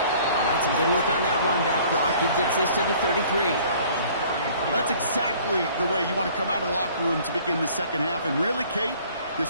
right, some good work on that run back, Brock. He gets this to the 33. Well, that's exactly the way you want to come out of the locker room to begin the second half. And really, Kate,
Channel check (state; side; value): inverted; both; correlation -0.54